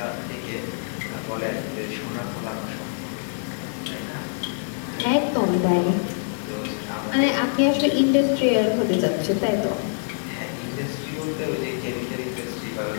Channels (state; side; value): silent; right; 62 dB below the other